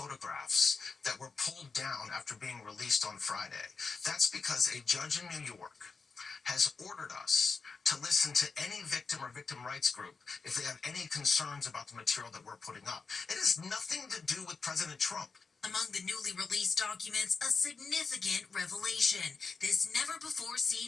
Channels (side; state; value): right; quieter; 4.6 dB